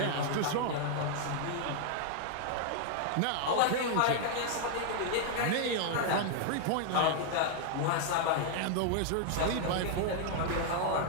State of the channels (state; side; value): different; both; correlation 0.00